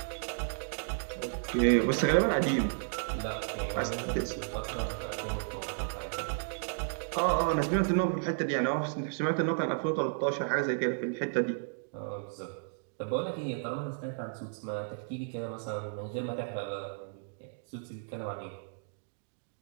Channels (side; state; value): left; silent; digital silence